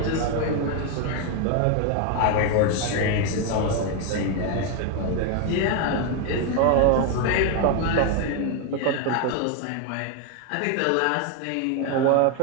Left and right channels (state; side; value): different; both; correlation 0.01